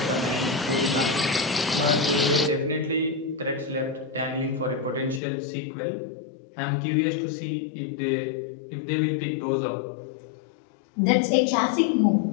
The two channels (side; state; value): right; drops out; at 5.2 s